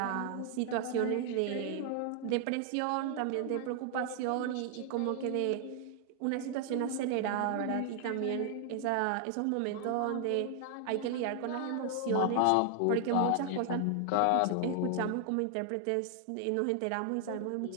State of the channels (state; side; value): different; both; correlation 0.00